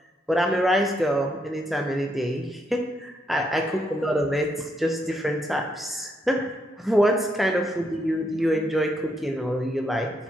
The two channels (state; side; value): normal; both; correlation 0.77